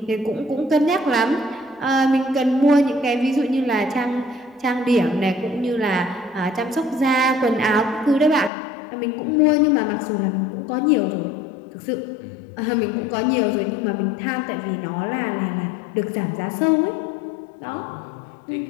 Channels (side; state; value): right; drops out; at 8.5 s